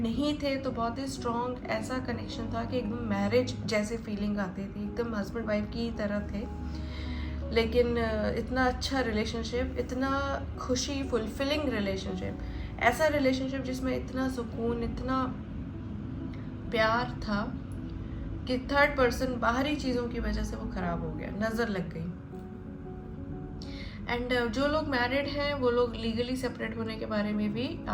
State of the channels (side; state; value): both; identical; correlation 1.00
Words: नहीं थे, तो बहुत ही स्ट्रॉन्ग ऐसा कनेक्शन था कि एकदम मैरिज जैसे फीलिंग आती थी, एकदम हस्बैंड वाइफ की तरह थे। लेकिन इतना अच्छा रिलेशनशिप, इतना खुशी फुलफिलिंग रिलेशनशिप, ऐसा रिलेशनशिप जिसमें इतना सुकून, इतना प्यार था कि थर्ड पर्सन बाहरी चीज़ों की वजह से वो ख़राब हो गया, नज़र लग गई। एंड जो लोग मैरिड हैं वो लोग लीगली सेपरेट होने के बारे में भी